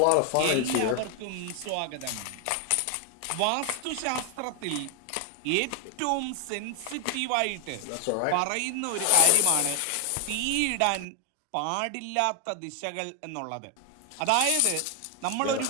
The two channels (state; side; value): different; both; correlation 0.00